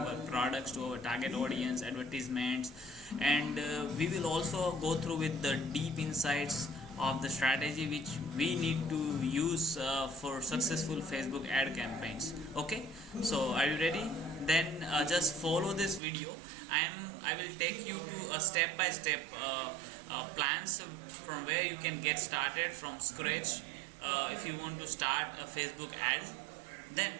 products to our target audience, advertisements, and we will also go through with the deep insights of the strategy which we need to use for successful Facebook ad campaigns. Okay, so are you ready? Then just follow this video. I will take you to a step by step plans from where you can get started from scratch if you want to start a Facebook ad. Then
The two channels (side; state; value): left; drops out; at 16.0 s